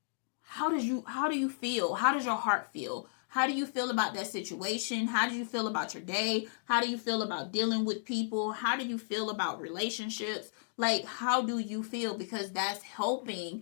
how do you feel? How does your heart feel? How do you feel about that situation? How do you feel about your day? How do you feel about dealing with people? How do you feel about relationships? Like, how do you feel? Because that's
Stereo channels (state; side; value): silent; right; digital silence